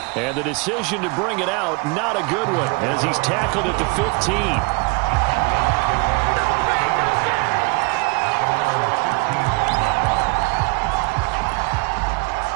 And the decision to bring it out, not a good one, as he's tackled at the 15.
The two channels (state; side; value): quieter; left; 28.5 dB